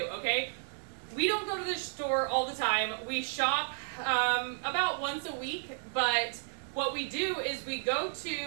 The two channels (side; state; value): left; silent; 56 dB below the other